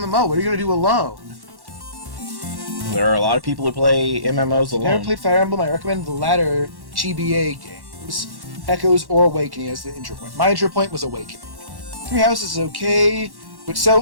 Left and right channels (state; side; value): late; left; 1.1 ms